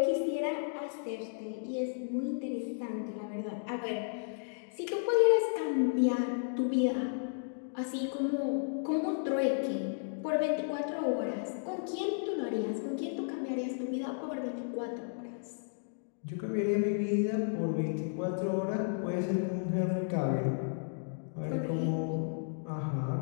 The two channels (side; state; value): right; silent; digital silence